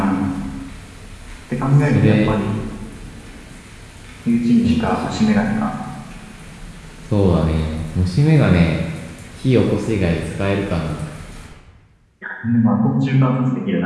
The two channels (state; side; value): identical; both; correlation 1.00